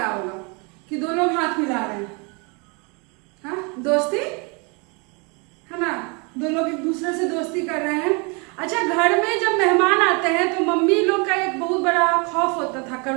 होगा कि दो लोग हाथ मिला रहे हैं। हाँ, दोस्ती है ना, दो लोग एक दूसरे से दोस्ती कर रहे हैं। अच्छा, घर में जब मेहमान आते हैं तो मम्मी लोग का एक बहुत बड़ा खौफ होता था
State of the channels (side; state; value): left; quieter; 32.2 dB